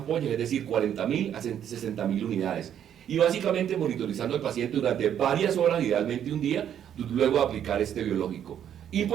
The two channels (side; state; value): left; quieter; 9.6 dB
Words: es decir, 40.000 a 60.000 unidades. Y básicamente monitorizando al paciente durante varias horas, idealmente un día, luego de aplicar este biológico.